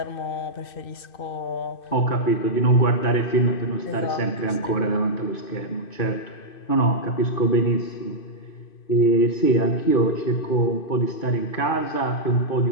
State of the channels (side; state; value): right; late; 2.5 ms